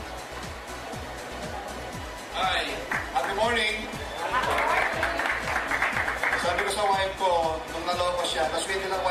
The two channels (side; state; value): both; identical; correlation 1.00